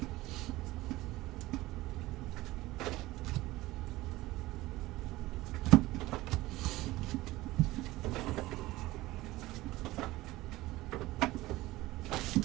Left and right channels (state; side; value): quieter; left; 18.3 dB